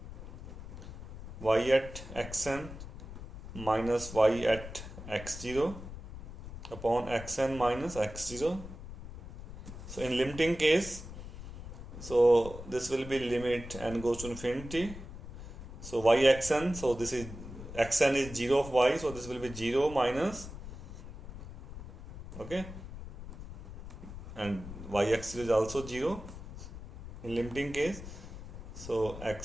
y at xn minus y at x0 upon xn minus x0. So in limiting case, so this will be limit n goes to infinity, so y xn, so this is xn is 0 of y, so this will be 0 minus, okay, and y x0 is also 0 in limiting case, so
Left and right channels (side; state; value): left; noise; rumble, 12 dB below the sound